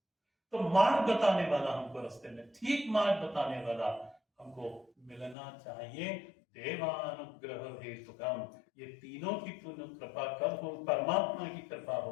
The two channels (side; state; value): right; drops out; at 5.4 s